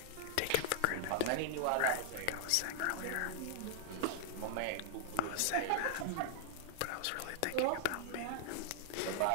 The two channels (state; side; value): different; both; correlation 0.00